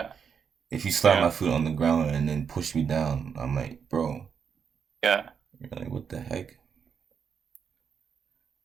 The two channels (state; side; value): quieter; left; 6.8 dB